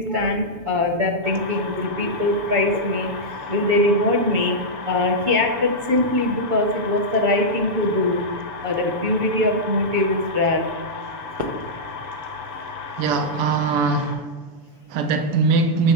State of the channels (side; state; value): left; late; 7.0 ms